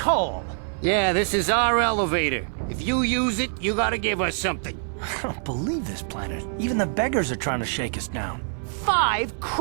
Yeah, this is our elevator. If you use it, you gotta give us something. I don't believe this planet. Even the beggars are trying to shake us down. 5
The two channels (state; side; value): silent; left; 61 dB below the other